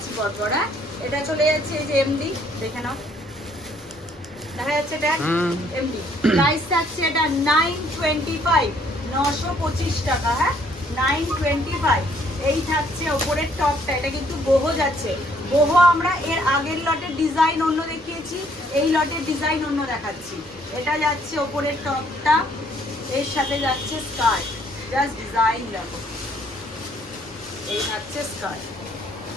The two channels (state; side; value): normal; both; correlation 0.65